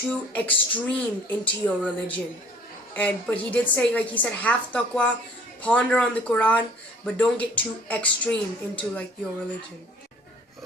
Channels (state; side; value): normal; both; correlation 0.53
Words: extreme into your religion. But he did say, he said, have taqwa, ponder on the Quran, but don't get too extreme into your religion.